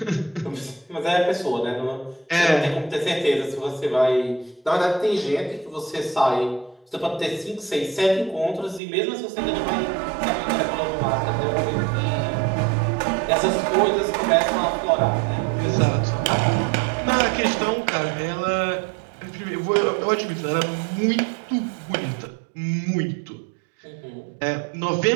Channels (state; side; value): drops out; left; at 8.8 s